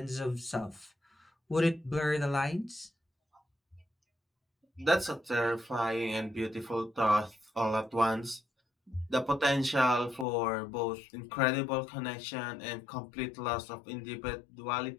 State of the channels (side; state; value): right; drops out; at 10.2 s